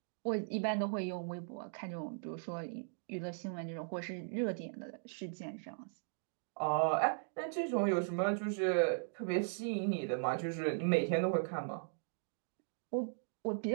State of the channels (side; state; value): left; silent; digital silence